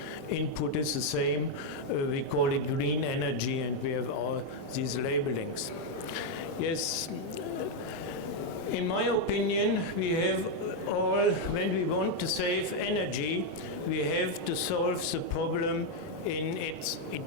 input is the same. We call it green energy, and we have all these labelings. Yes. In my opinion, we have all, when we want to save energy, we have to solve the problem in its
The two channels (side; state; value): both; normal; correlation 0.01